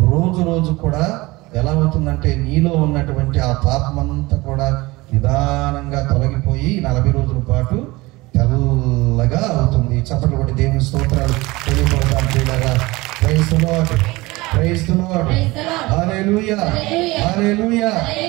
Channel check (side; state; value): left; quieter; 21.5 dB